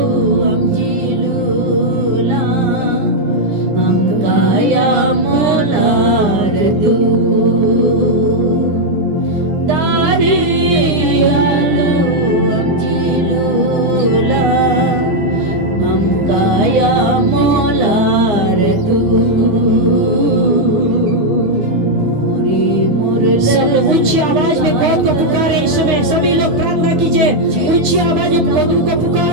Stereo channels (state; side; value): late; left; 9.7 ms